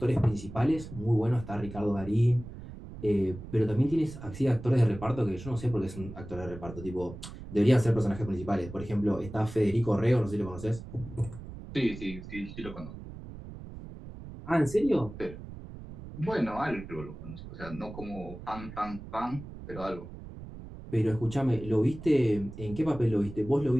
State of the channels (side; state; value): right; noise; rumble, 13 dB below the sound